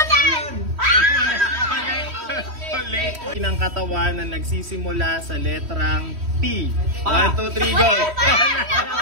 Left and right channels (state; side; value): late; left; 3.1 ms